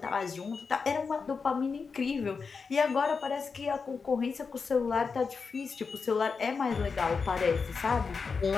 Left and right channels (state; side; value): quieter; right; 5.1 dB